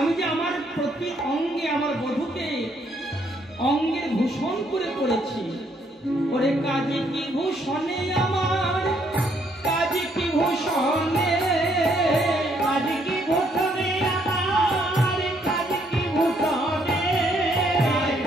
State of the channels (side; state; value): both; normal; correlation 0.70